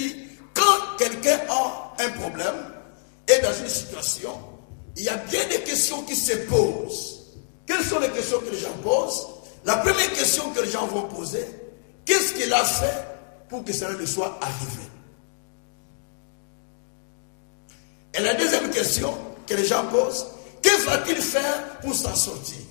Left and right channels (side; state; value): right; silent; digital silence